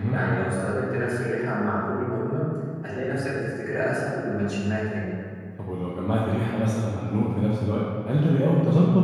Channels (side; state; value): both; identical; correlation 1.00